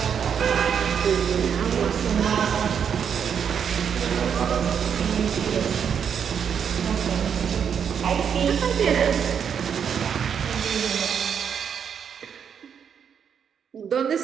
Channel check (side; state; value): left; quieter; 7.6 dB